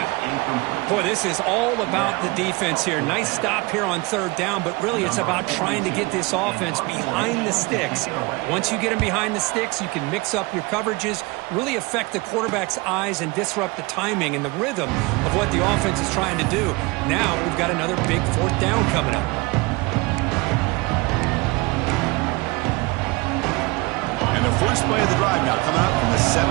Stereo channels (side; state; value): left; quieter; 25.0 dB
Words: Boy, this is all about the defense here. Nice stop here on third down, but really it's about trying to get this offense behind the sticks. Once you get them behind the sticks, you can mix up your coverages, really affect the quarterback's eyes and disrupt the timing and the rhythm of what the offense is trying to do. Now we've got another big fourth down coming up. And the first play of the drive now coming up from the